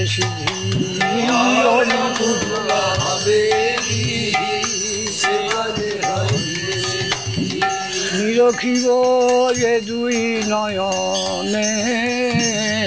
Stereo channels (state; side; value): identical; both; correlation 1.00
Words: সিদ্ধি, অনুকূল হবে বিধি, সে পদে হইবে সিদ্ধি। নিরখিব এ দুই নয়নে,